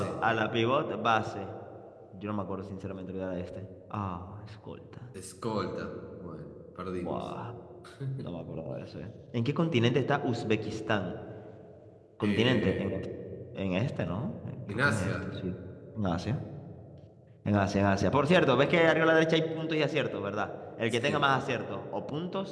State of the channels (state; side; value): identical; both; correlation 1.00